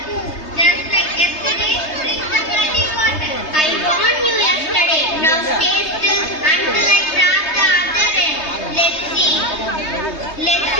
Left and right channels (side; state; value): right; late; 3.2 ms